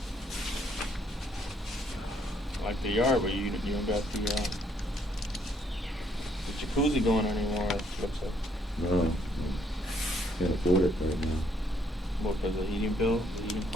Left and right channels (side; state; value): both; normal; correlation 0.68